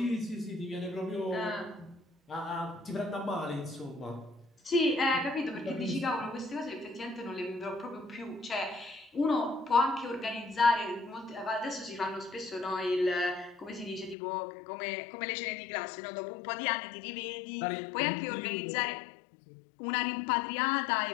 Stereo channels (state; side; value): drops out; right; at 14.2 s